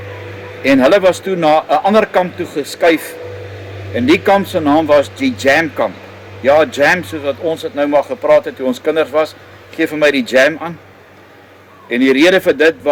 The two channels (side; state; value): both; identical; correlation 1.00